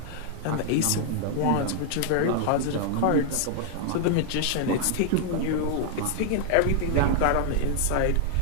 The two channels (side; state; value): both; different; correlation 0.00